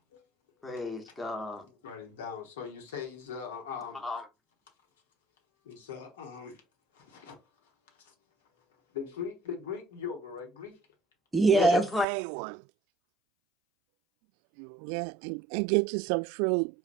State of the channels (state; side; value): drops out; left; at 12.1 s